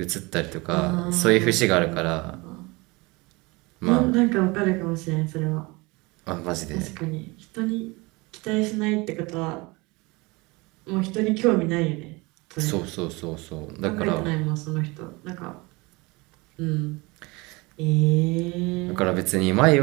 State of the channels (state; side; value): quieter; left; 24.8 dB